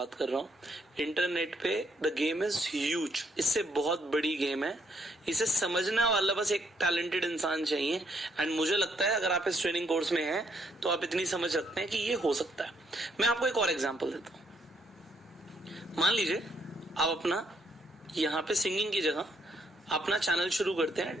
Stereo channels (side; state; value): both; normal; correlation 0.72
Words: कर रहा हूँ। इंटरनेट पे द गेम इज ह्यूज, इससे बहुत बड़ी गेम है। इसे समझने वाला बस एक टैलेंटेड इंसान चाहिए, एंड मुझे लगता है अगर आप इस ट्रेनिंग कोर्स में हैं तो आप इतनी समझ रखते हैं कि ये हो सकता है। मैं आपको एक और एग्जांपल देता हूँ। मान लीजिए आप अपना यहाँ पे सिंगिंग की जगह अपना चैनल शुरू करते